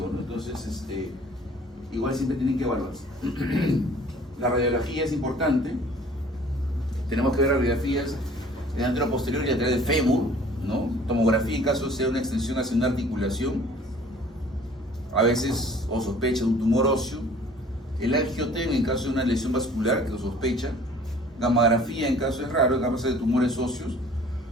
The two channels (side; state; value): both; normal; correlation 0.51